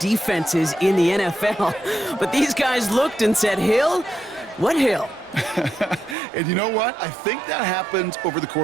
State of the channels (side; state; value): left; drops out; at 6.2 s